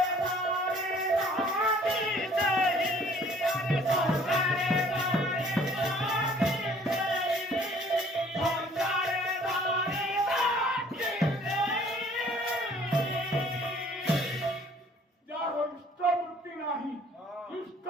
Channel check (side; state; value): both; normal; correlation 0.56